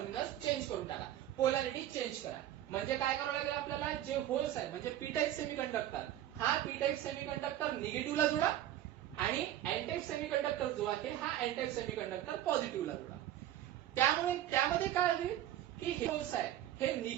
चेंज करून टाका, पोलॅरिटी चेंज करा. म्हणजे काय करावं लागेल आपल्याला, जे होल्स आहे म्हणजे पी टाइप सेमीकंडक्टर, हा पी टाइप सेमीकंडक्टर निगेटिव्हला जोडा आणि एन टाइप सेमीकंडक्टर जो आहे हा एन टाइप सेमीकंडक्टर पॉझिटिव्हला जोडा. त्यामुळे त्यामध्ये काय होईल की हे होल्स आहे हे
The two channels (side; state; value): left; quieter; 12.6 dB